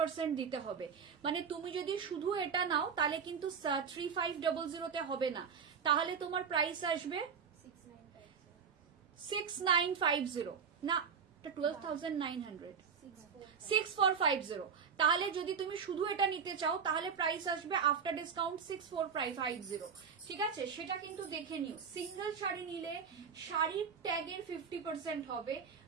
দিতে হবে। মানে তুমি যদি শুধু এটা নাও তাহলে কিন্তু 3500 তে হবে না, তাহলে তোমার প্রাইস আসবে 6950 না, 12900, 6450। তাহলে যদি তুমি শুধু এটা নিতে চাও তাহলে প্রাইস আসবে আফটার ডিসকাউন্ট 6450, ঠিক আছে। সেটা কিন্তু দেখে নিও। সিঙ্গেল শাড়ি নিলে শাড়ির ট্যাগের 50% হবে,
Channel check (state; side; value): quieter; left; 6.5 dB